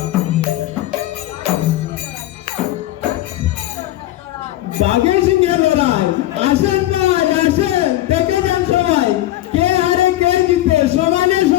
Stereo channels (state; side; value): quieter; right; 15.2 dB